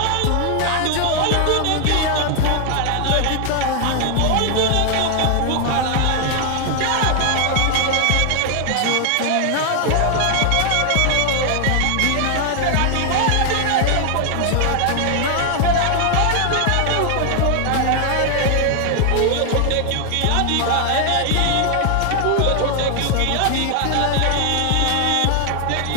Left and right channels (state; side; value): different; both; correlation 0.00